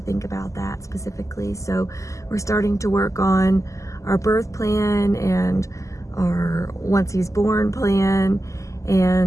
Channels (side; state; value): right; late; 0.16 ms